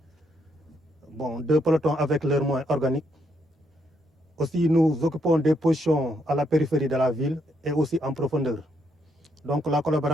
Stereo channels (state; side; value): normal; both; correlation 0.75